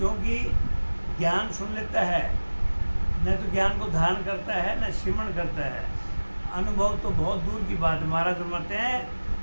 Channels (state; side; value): inverted; both; correlation -1.00